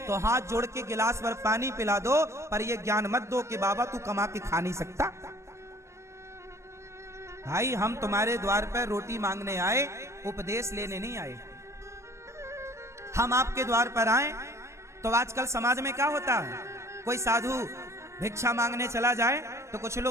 तो हाथ जोड़ के गिलास भर पानी पिला दो, पर यह ज्ञान मत दो कि बाबा तू कमा के खा नहीं सकता। भाई हम तुम्हारे द्वार पर रोटी मांगने आए, उपदेश लेने नहीं आए। हम आपके द्वार पर आए तो आजकल समाज में क्या होता है, कोई साधु भिक्षा मांगने चला जाए तो कुछ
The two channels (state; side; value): late; left; 0.13 ms